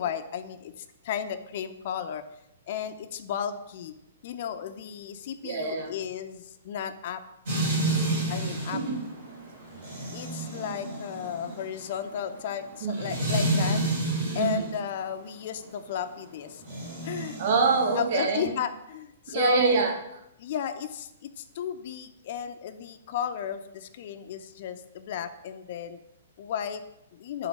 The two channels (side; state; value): both; inverted; correlation -0.41